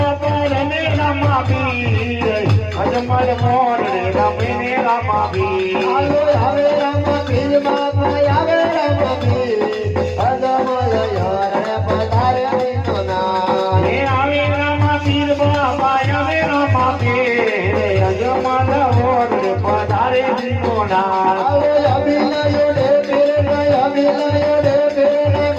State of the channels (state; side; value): identical; both; correlation 1.00